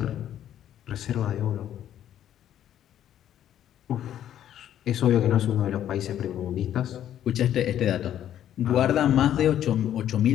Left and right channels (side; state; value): right; quieter; 11.0 dB